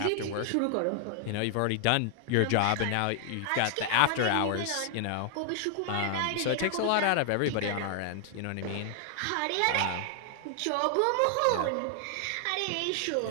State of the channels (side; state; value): both; different; correlation 0.00